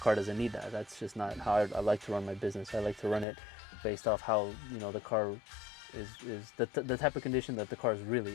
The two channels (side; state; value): right; drops out; at 3.2 s